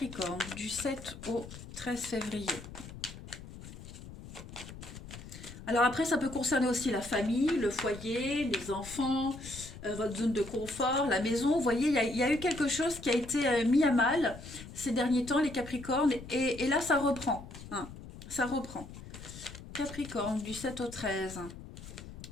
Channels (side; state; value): left; noise; rumble, 14 dB below the sound